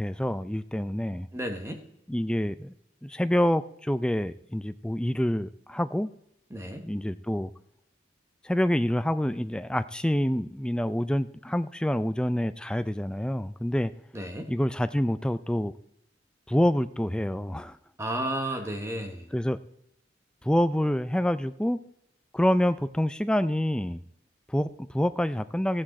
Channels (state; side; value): normal; both; correlation 0.96